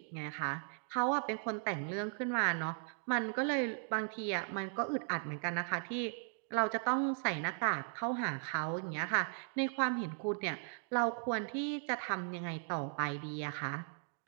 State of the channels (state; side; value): silent; left; 53 dB below the other